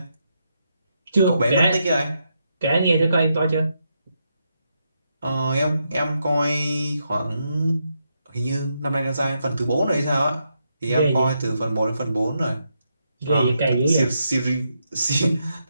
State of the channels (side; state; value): both; inverted; correlation -0.81